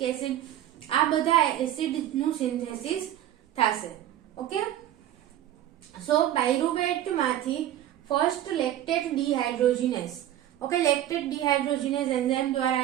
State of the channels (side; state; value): left; quieter; 12.4 dB